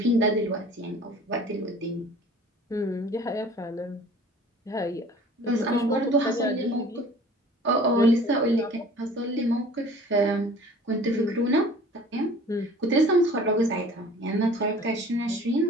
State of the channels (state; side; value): normal; both; correlation 0.47